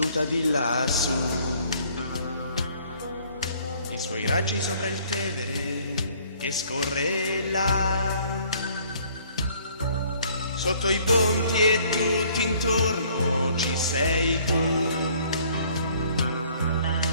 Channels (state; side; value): inverted; both; correlation -0.59